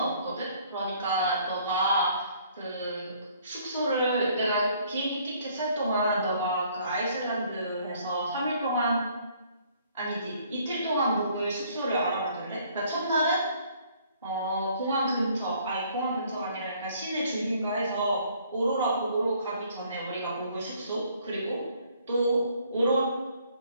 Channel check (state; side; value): inverted; both; correlation -0.61